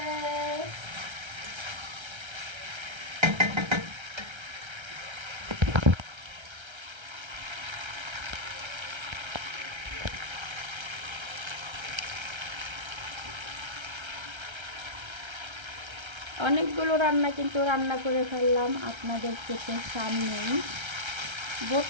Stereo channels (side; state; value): left; late; 1.3 ms